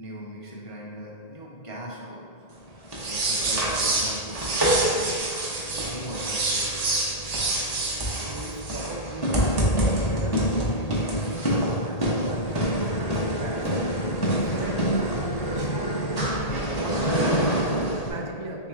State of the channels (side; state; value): right; late; 1.8 ms